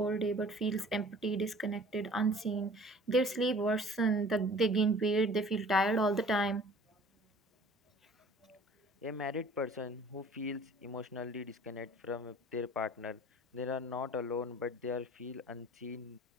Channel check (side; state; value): both; normal; correlation 0.48